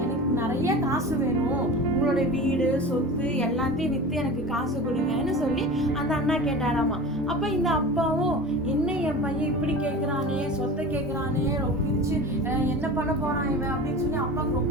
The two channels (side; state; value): both; normal; correlation 0.33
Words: எனக்கு நிறைய காசு வேணும், உங்களோட வீடு சொத்து எல்லாத்தையும் விற்று எனக்கு காசு கொடுங்கன்னு சொல்லி அந்த அண்ணா கேட்டாராமா. அப்போ இந்த அப்பாவும், என்ன என் பையன் இப்படி கேட்குறானே, சொத்தை கேட்குறானே, பிரிச்சு என்ன பண்ண போறான் இவன் அப்படின்னு சொல்லி அப்பாவுக்கு